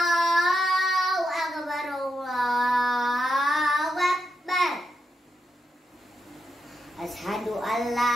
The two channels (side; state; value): both; normal; correlation 0.84